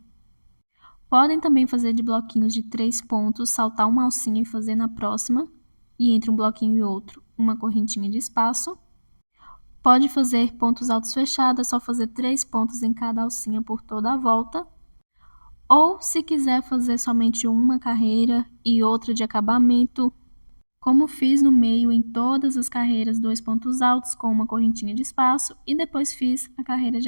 Podem também fazer de bloquinhos de 3 pontos, saltar uma alcinha e fazer na próxima, e entre um bloquinho e outro, uma correntinha de espaço. Pode fazer pontos altos fechados, é só fazer 3 pontos em cada alcinha por toda a volta. Ou, se quiser fazer somente uma carreira e outra de acabamento, como fiz no meio em todas as carreiras, 2 pontos altos com uma correntinha de espaço e depois fiz a carreira de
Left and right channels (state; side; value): inverted; both; correlation -1.00